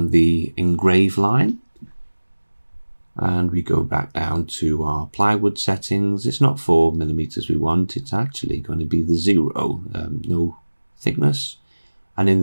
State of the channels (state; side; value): inverted; both; correlation -1.00